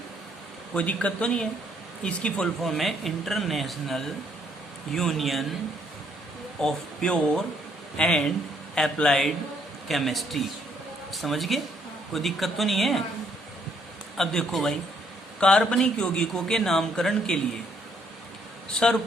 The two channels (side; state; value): both; normal; correlation 0.69